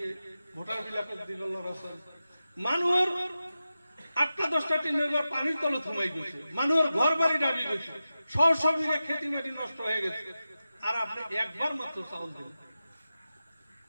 ভোটার বিলাকে দিল লড়াছোয়ালি। মানুষের 8-10টা টিনের ঘর পানির তলে থমাই গেছে, মানুষের ঘর বাড়ি ডাবি গেছে, সব বিঘা খেতি মাটি নষ্ট হয়ে গেছে, আর আপনি একবার মাত্র চাউল দিলেন,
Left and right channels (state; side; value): inverted; both; correlation -0.93